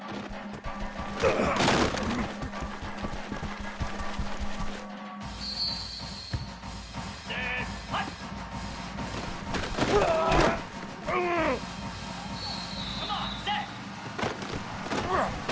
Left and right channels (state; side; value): identical; both; correlation 1.00